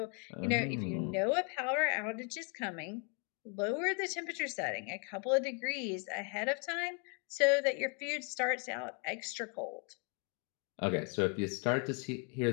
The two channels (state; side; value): quieter; right; 37.4 dB